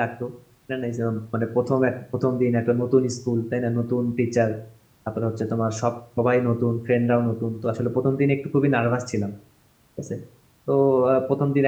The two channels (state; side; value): identical; both; correlation 1.00